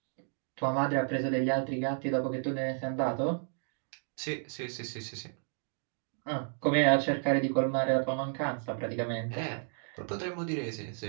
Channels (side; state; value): left; silent; 56 dB below the other